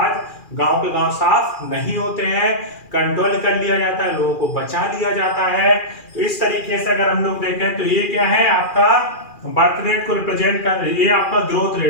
गांव के गांव साफ नहीं होते हैं, कंट्रोल कर लिया जाता है, लोगों को बचा लिया जाता है। तो इस तरीके से अगर हम लोग देखें तो ये क्या है? आपका बर्थ रेट को रिप्रेजेंट कर, ये आपका ग्रोथ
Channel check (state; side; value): late; right; 2.4 ms